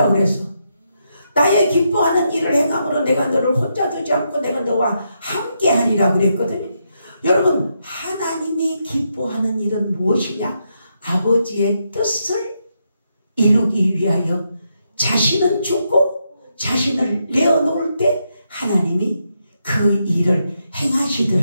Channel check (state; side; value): inverted; both; correlation -0.81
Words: 그랬어. 나의 기뻐하는 일을 행함으로 내가 너를 혼자 두지 않고 내가 너와 함께 하리라 그랬거든요. 여러분, 하나님이 기뻐하는 일은 무엇이냐? 아버지의 뜻을 이루기 위하여 자신은 죽고 자신을 내어놓을 때 하나님이 그 일을